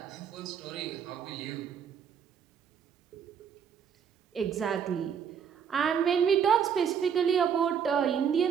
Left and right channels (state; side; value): quieter; left; 7.6 dB